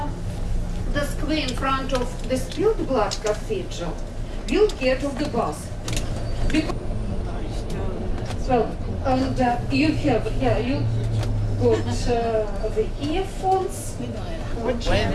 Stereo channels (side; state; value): both; identical; correlation 1.00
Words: the square in front of the Spilled Blood Cathedral, we'll get off the bus. Well, and you have, you got the earphones.